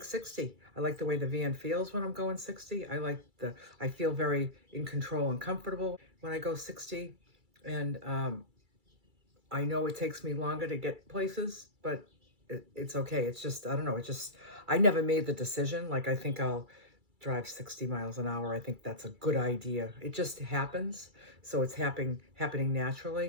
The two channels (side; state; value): left; late; 2.3 ms